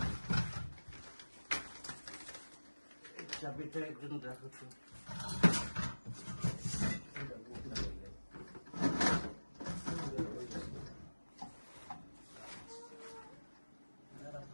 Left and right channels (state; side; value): inverted; both; correlation -1.00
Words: চাবিটা একজন রাখো তো।